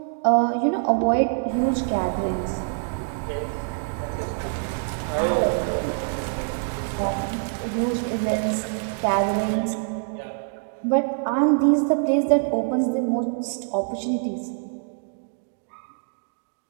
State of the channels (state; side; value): silent; left; digital silence